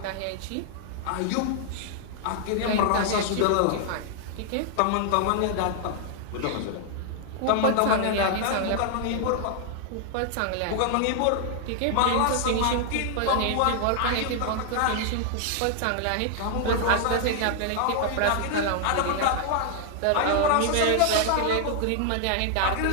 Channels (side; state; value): both; different; correlation 0.00